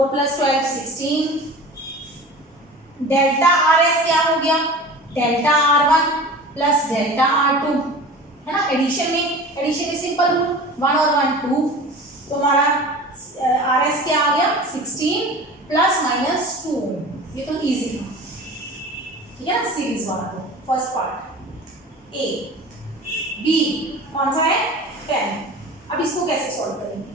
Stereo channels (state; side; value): normal; both; correlation 0.38